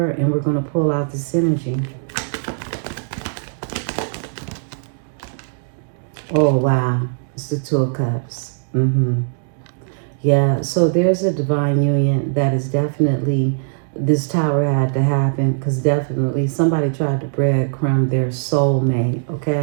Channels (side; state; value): left; silent; digital silence